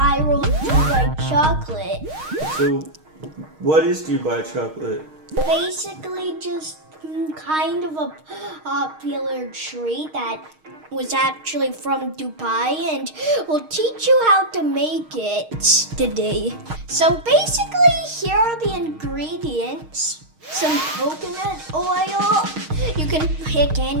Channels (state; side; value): late; left; 6.4 ms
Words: Dubai chocolate. So, what is Dubai chocolate? Basically just kind of a popular treat that was actually from Dubai, and we'll teach you how to make it today. So basically, here are the ingredients. Some coconut oil. You can pick